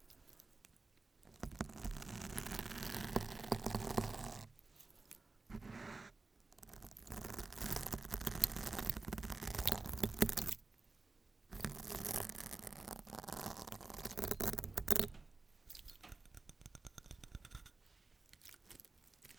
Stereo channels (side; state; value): left; quieter; 3.6 dB